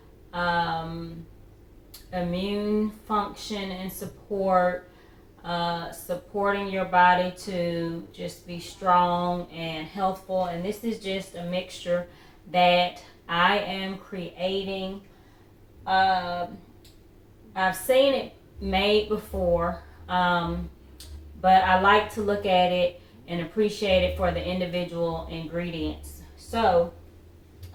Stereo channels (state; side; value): identical; both; correlation 1.00